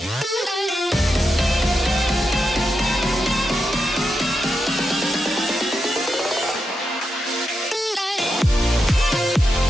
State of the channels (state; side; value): normal; both; correlation 0.86